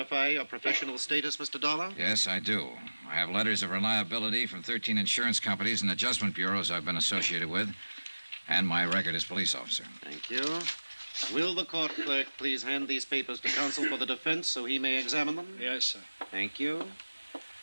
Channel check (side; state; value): both; inverted; correlation -1.00